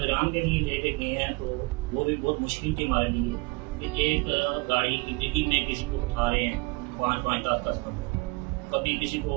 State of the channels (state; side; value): quieter; left; 26.5 dB